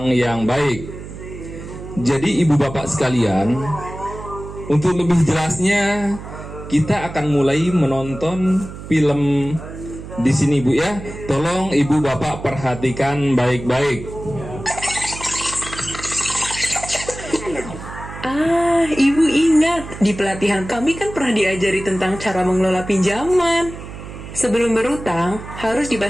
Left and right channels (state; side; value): noise; right; hum, 12 dB below the sound